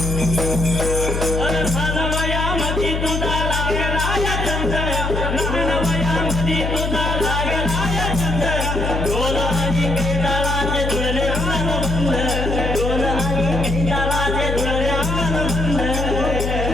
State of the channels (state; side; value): noise; left; hum, 2 dB below the sound